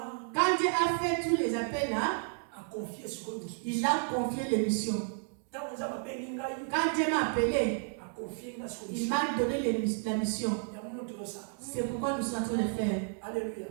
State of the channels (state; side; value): silent; left; 56 dB below the other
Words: Quand Dieu a fait tous les appels là, il a confié les missions. Quand Dieu m'a appelé, il m'a donné la mission. C'est pourquoi nous sommes en train de faire. Alléluia.